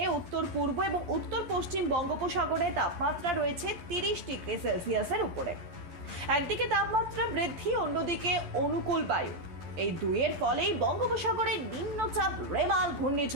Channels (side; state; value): left; late; 12 ms